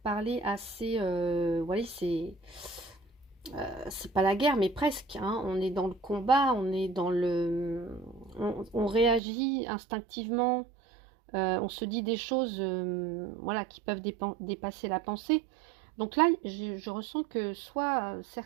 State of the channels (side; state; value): left; drops out; at 9.2 s